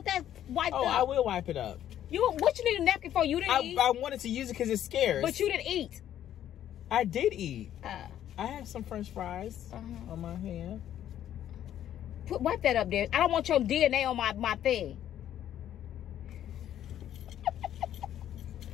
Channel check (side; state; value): right; quieter; 11.2 dB